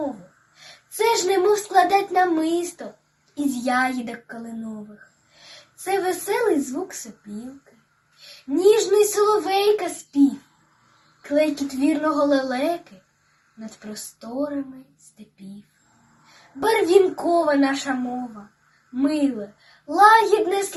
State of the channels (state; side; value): identical; both; correlation 1.00